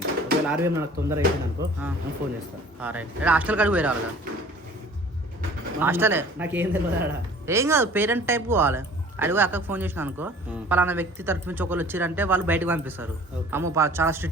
ఒకవేళ ఆర్వీఎం నాకు తొందర అయిపోయింది అనుకో నేను ఫోన్ చేస్తాను. రైట్. హాస్టల్ కాడికి పోయి రావాలి కదా. హాస్టలే నాకేం తెలియదు ఆడ. ఏం కాదు, పేరెంట్ టైప్ పోవాలి. అడిగి అక్కకు ఫోన్ చేసిన అనుకో, పలానా వ్యక్తి తరఫు నుంచి ఒకళ్ళు వచ్చారంటే వాళ్ళు బయటకు పంపిస్తారు. అమ్మో చాలా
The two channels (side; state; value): both; normal; correlation 0.48